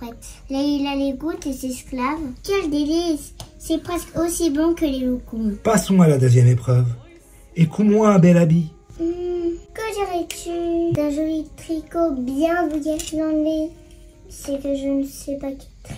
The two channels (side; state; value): both; identical; correlation 1.00